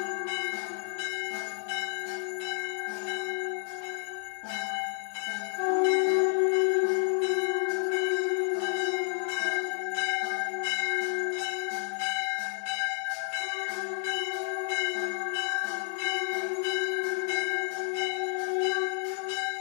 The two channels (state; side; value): silent; right; 57 dB below the other